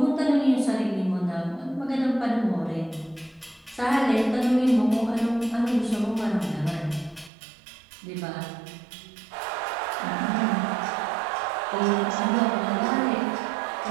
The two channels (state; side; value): drops out; left; at 7.3 s